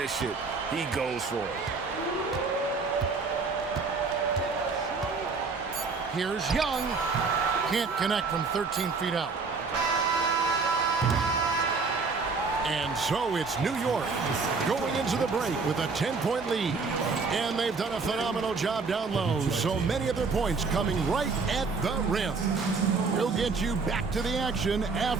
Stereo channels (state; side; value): quieter; left; 4.5 dB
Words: it, he goes for it. Here's Young. Can't connect from 13 feet out. And so it's New York going into the break with a 10-point lead. And they've done a phenomenal job down low. So many of their points coming right at the rim. We'll get you back to the action